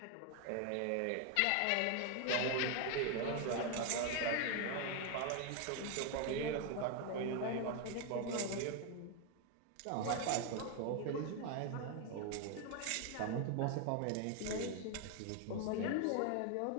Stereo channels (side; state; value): both; different; correlation 0.01